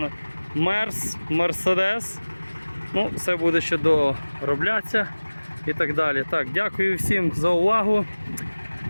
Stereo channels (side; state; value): both; inverted; correlation -1.00